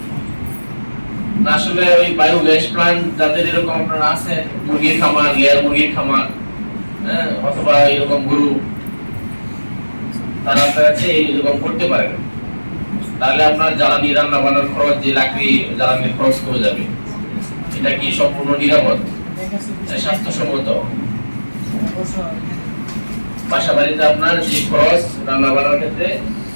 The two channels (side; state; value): both; inverted; correlation -1.00